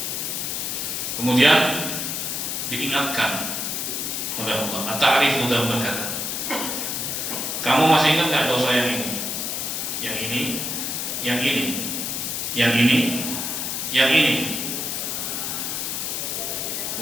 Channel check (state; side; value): noise; left; hiss, 2 dB below the sound